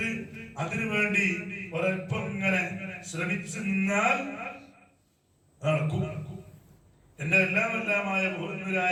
അതിനുവേണ്ടി ഒരൽപ്പം ഇങ്ങനെ ശ്രമിച്ചു നിന്നാൽ നടക്കും. എന്റെ എല്ലാമെല്ലാമായ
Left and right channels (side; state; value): both; identical; correlation 1.00